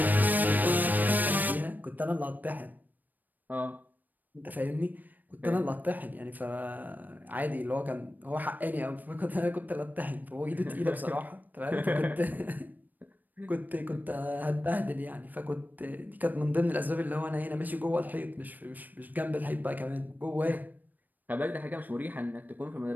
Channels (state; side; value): late; left; 0.087 ms